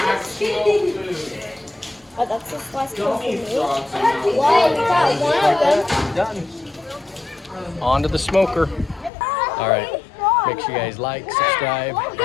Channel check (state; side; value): drops out; right; at 9.1 s